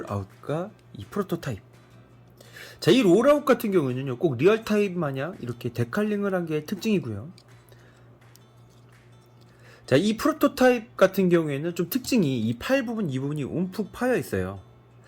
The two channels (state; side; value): identical; both; correlation 1.00